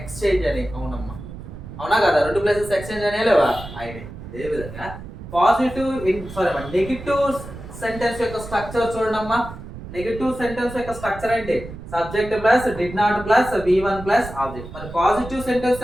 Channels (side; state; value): right; noise; rumble, 13 dB below the sound